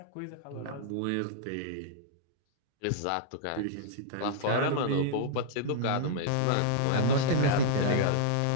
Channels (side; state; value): both; different; correlation -0.02